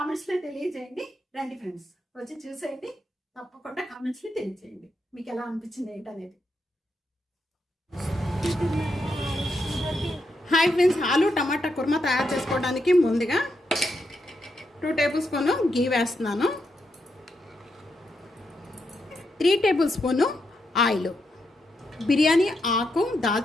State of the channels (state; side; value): normal; both; correlation 0.82